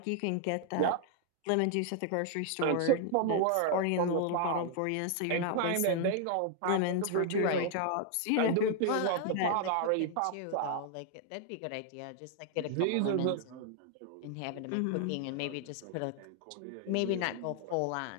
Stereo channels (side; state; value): both; different; correlation 0.00